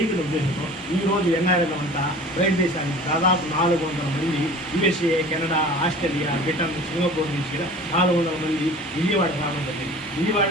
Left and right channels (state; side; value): normal; both; correlation 0.42